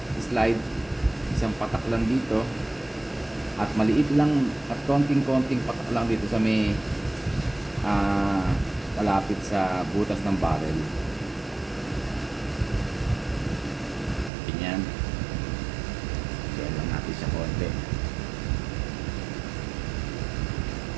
slide, isang patak lang dito at maliit lang at konting-konting patak lang dito sa may malapit sa butas ng barrel. Ganyan. Kaya lang natin siya konti.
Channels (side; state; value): left; drops out; at 14.3 s